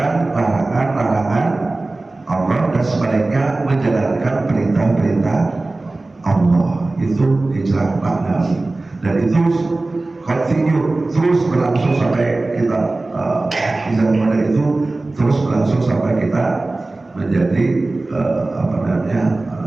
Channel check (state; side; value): quieter; left; 3.1 dB